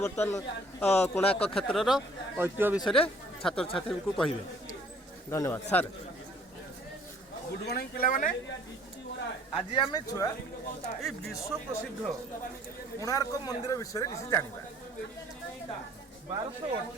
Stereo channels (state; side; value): normal; both; correlation 0.57